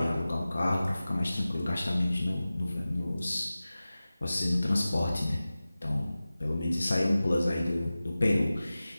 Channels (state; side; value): inverted; both; correlation -0.96